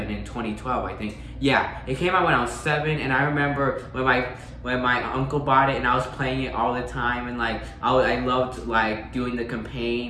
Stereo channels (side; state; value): both; identical; correlation 1.00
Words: in 2012. I think it came out when I was 7, and I remember when my uncle bought it and I was playing it all the time, and like I loved like doing the